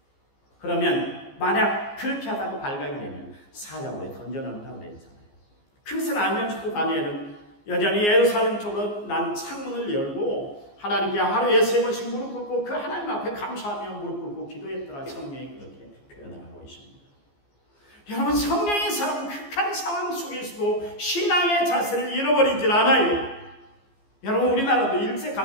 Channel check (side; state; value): right; late; 14 ms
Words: 그러면 만약 그렇게 하다가 발각이 되면 사자굴에 던져놓는다고 그랬잖아요. 그것을 알면서도 다니엘은 여전히 예루살렘 쪽으로 난 창문을 열고 하나님께 하루에 3번씩 무릎 꿇고 그 하나님 앞에 감사하며 무릎 꿇고 기도했더라. 성경이 그렇게 표현을 하고 있습니다. 여러분, 성령의 사람은 극한 상황 속에서도 신앙의 자세를 잃어버리질 않아요. 여러분, 우리나라도